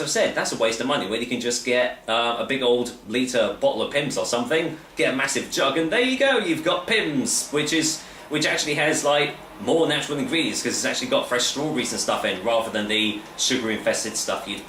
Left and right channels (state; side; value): identical; both; correlation 1.00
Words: I've said, that's a waste of money when you can just get a big old litre bottle of Pimm's or something, get a massive jug, and there you go, you've got Pimm's, which actually has like more natural ingredients because it's actually got fresh strawberries and stuff in rather than the sugar-infested stuff you'd